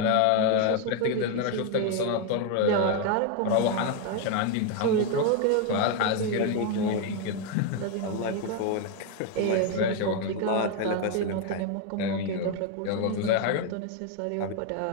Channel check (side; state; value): both; different; correlation 0.01